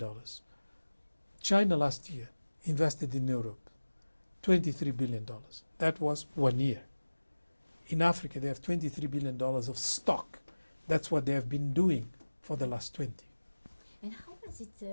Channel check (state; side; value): inverted; both; correlation -1.00